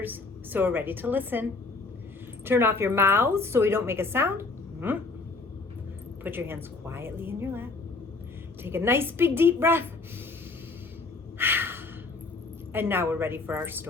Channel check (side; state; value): right; quieter; 3.8 dB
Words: so we're ready to listen. Turn off your mouths so we don't make a sound. Put your hands quietly in your lap. Take a nice big deep breath. And now we're ready for our